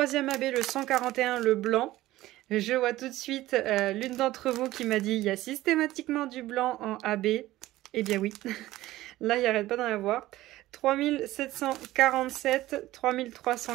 AB, le 141, le blanc. Je vois tout de suite l'une d'entre vous qui m'a dit il y a systématiquement du blanc en AB. Eh bien oui, là il n'y arrête pas d'en avoir. 3747,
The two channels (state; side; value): quieter; left; 16.2 dB